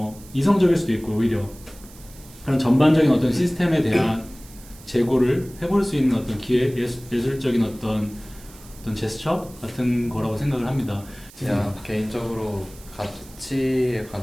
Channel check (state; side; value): noise; right; hiss, 21 dB below the sound